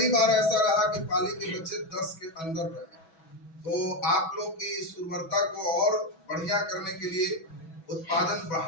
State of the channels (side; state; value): right; late; 6.1 ms